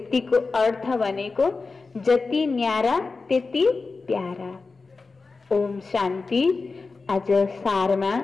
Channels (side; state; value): right; quieter; 4.1 dB